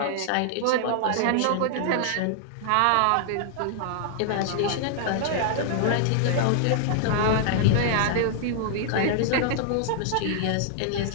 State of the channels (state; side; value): different; both; correlation 0.00